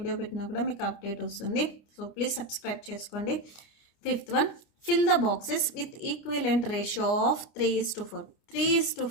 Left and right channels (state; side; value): late; right; 29 ms